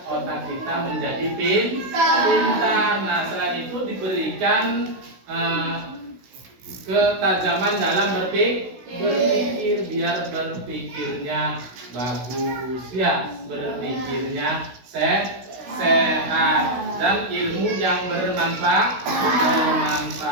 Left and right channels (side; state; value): left; late; 16 ms